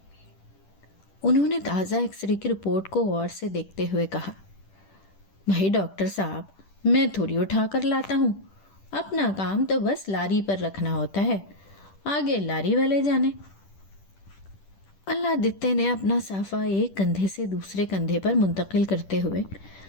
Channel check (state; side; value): late; right; 10 ms